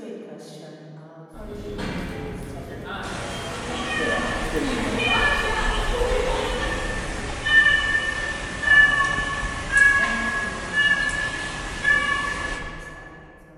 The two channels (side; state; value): both; identical; correlation 1.00